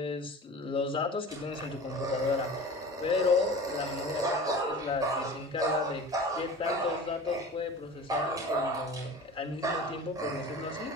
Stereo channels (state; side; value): normal; both; correlation 0.37